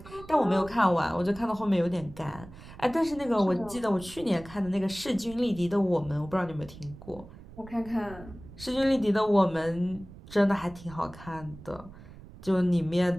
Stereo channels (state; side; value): noise; right; rumble, 18 dB below the sound